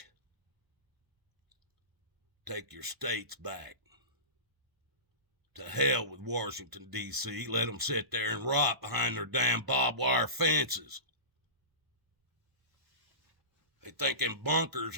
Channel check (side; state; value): left; late; 1.0 ms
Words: Take your states back. To hell with Washington, D.C. Let them sit there and rot behind their damn barbed wire fences. They think them bunkers